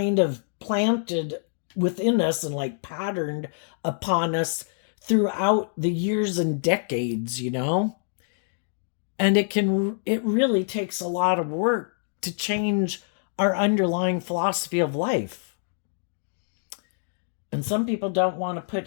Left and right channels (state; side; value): silent; right; digital silence